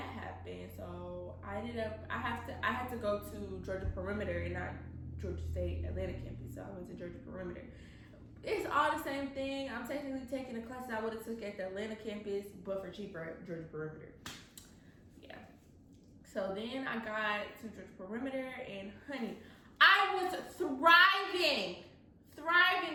So I had to go to Georgia Perimeter and not Georgia State Atlanta campus. So I went to Georgia Perimeter. It's all the same thing. I'm technically taking the classes I would have took at the Atlanta campus, but for cheaper at Georgia Perimeter. Yeah. So then I got to Georgia Perimeter, and honey, I was thriving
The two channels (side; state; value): both; identical; correlation 1.00